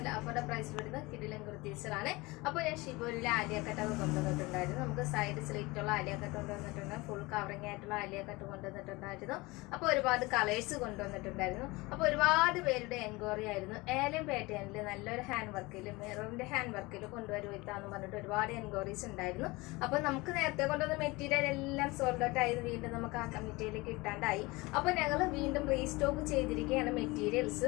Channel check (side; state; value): right; quieter; 23.1 dB